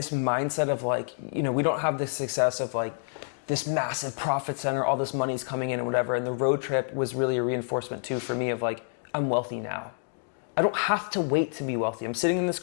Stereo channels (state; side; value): silent; right; digital silence